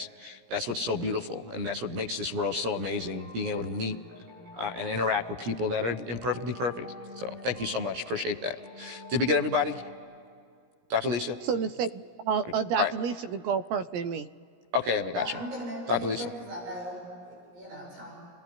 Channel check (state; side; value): late; left; 17 ms